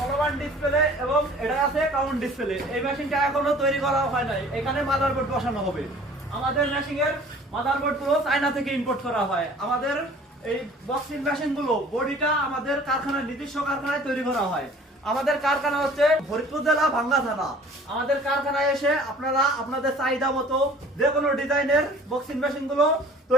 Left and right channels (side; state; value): both; normal; correlation 0.49